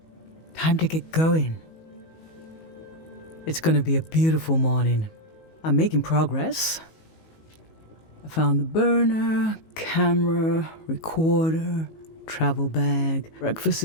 Time to get going. It's gonna be a beautiful morning. I'm making progress. I found the burner, camera, recorder, travel bag. Breakfast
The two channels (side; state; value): right; late; 19 ms